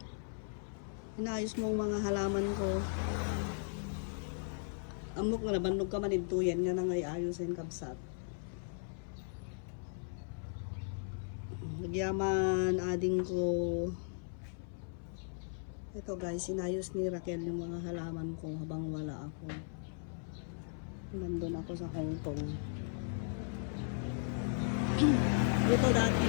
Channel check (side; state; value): right; silent; 53 dB below the other